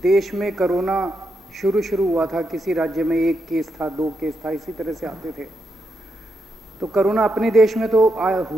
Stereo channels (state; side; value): normal; both; correlation 0.83